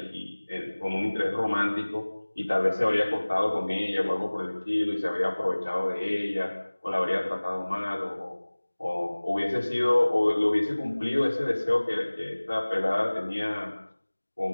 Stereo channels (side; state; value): both; inverted; correlation -1.00